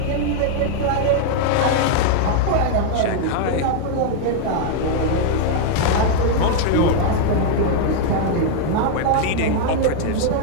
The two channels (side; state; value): both; different; correlation 0.00